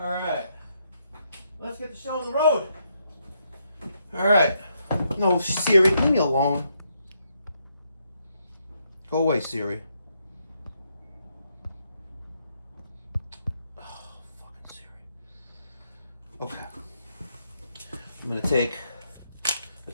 right. Let's get the show on the road. All right. No, Siri, leave me alone. Go away, Siri. Oh, fucking Siri. Okay. I'm gonna take a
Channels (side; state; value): both; inverted; correlation -0.77